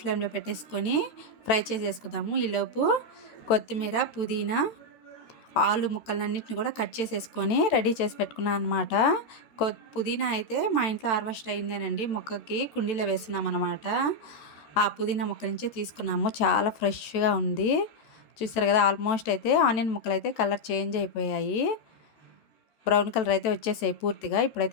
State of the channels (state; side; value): late; right; 14 ms